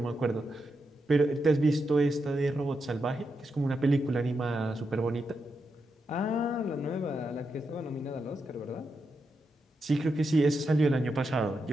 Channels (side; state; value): both; normal; correlation 0.85